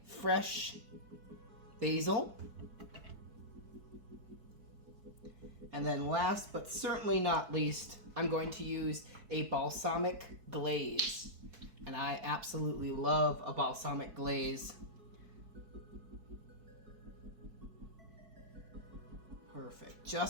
fresh basil. And then last but certainly not least, I'm going to use a balsamic glaze. And I absolutely love a balsamic glaze. Perfect,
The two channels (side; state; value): left; late; 4.6 ms